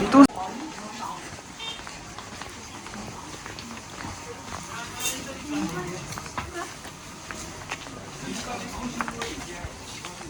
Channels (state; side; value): identical; both; correlation 1.00